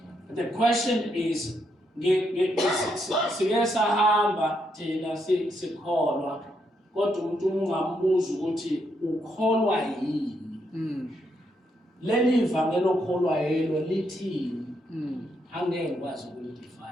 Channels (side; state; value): both; normal; correlation 0.78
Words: The question is, siyasahamba thina sikholwa kodwa umuntu ungambuza ukuthi ukholwa yini? Leli ivangeli okholwa yelo lithini? Angeke ngikwazi